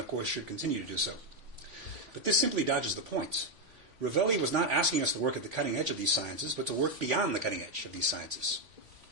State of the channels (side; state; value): left; late; 3.5 ms